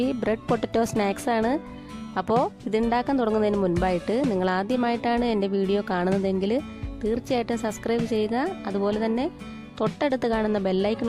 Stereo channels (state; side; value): identical; both; correlation 1.00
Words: ബ്രെഡ് പൊട്ടറ്റോ സ്നാക്സ് ആണ്. അപ്പോൾ ഇതുണ്ടാക്കാൻ തുടങ്ങുന്നതിന് മുൻപായിട്ട് നിങ്ങൾ ആദ്യമായിട്ടാണ് എൻ്റെ വീഡിയോ കാണുന്നതെങ്കിൽ തീർച്ചയായിട്ടും സബ്സ്ക്രൈബ് ചെയ്യുക. അതുപോലെ തന്നെ തൊട്ടടുത്ത് കാണുന്ന